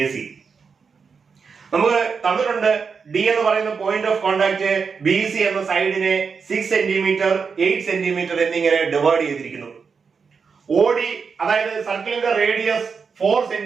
AC. നമുക്ക് തന്നിട്ടുണ്ട് ഡി എന്ന് പറയുന്ന point of contact B C എന്ന സൈഡിനെ 6 സെന്റിമീറ്റർ 8 സെന്റിമീറ്റർ എന്നിങ്ങനെ ഡിവൈഡ് ചെയ്തിരിക്കുന്നു. ഓഡി അതായത് സർക്കിളിന്റെ റേഡിയസ് 4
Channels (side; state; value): left; quieter; 5.6 dB